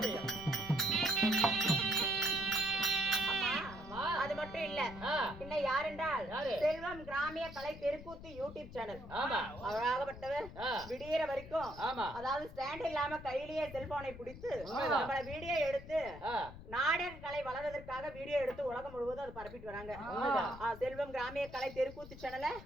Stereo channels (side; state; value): left; noise; rumble, 14 dB below the sound